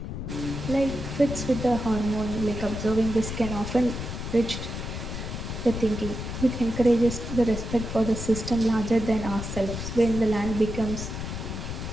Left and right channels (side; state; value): left; noise; rumble, 6 dB below the sound